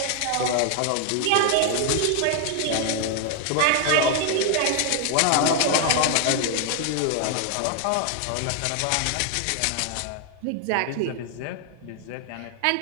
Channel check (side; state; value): both; different; correlation 0.00